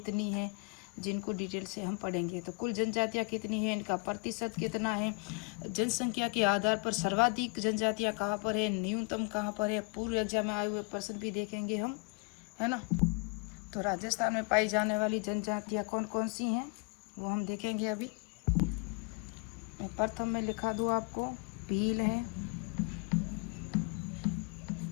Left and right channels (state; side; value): quieter; right; 31.8 dB